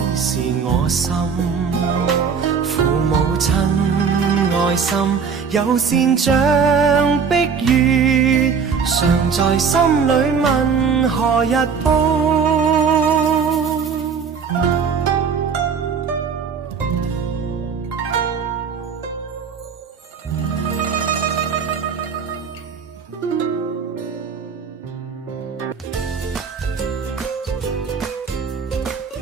是我心，父母親愛心有善像碧月，常在心裏問何日報。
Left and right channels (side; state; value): left; quieter; 6.1 dB